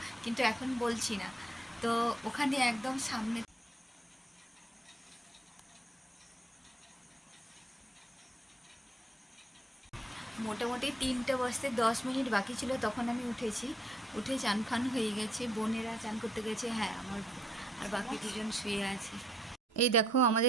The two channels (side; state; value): both; normal; correlation 0.70